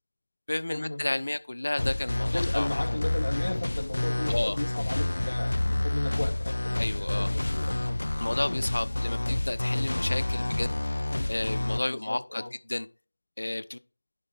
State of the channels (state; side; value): inverted; both; correlation -1.00